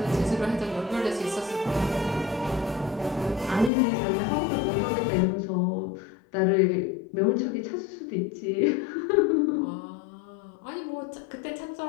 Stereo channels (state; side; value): drops out; right; at 3.7 s